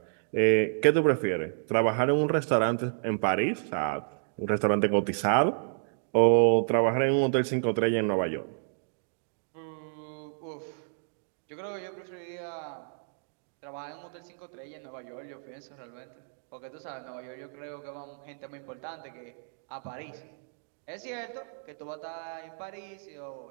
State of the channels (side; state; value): left; silent; digital silence